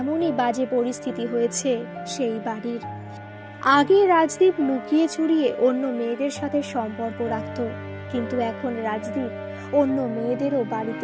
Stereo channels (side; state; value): both; identical; correlation 1.00